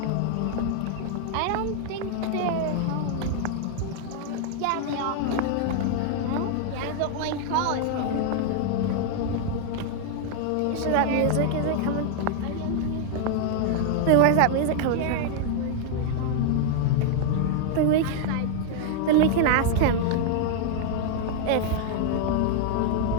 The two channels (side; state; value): both; different; correlation 0.00